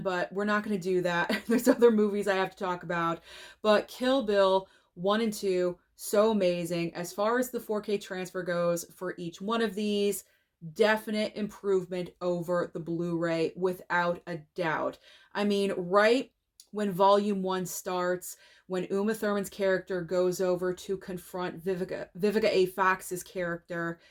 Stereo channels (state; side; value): identical; both; correlation 1.00